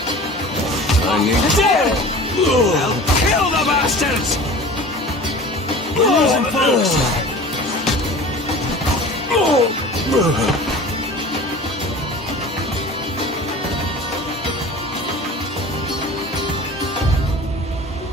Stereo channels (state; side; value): normal; both; correlation 0.40